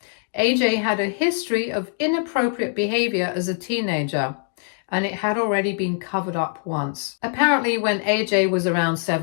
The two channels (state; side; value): silent; right; 64 dB below the other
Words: AJ had a history of inappropriate behavior as a teenager, and it had already been covered up once. Apparently, when AJ was around